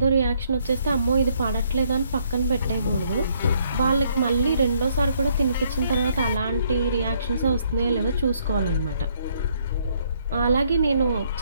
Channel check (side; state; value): both; inverted; correlation -0.68